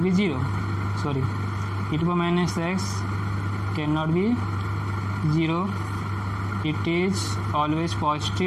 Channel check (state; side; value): identical; both; correlation 1.00